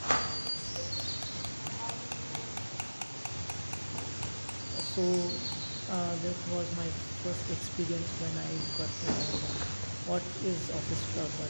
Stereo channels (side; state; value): both; inverted; correlation -1.00